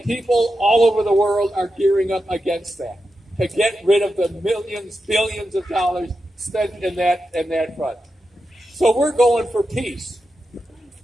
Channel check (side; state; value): both; normal; correlation 0.89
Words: people all over the world are gearing up against that, to get rid of the millions, billions of dollars spent in that front. So we're going for peace.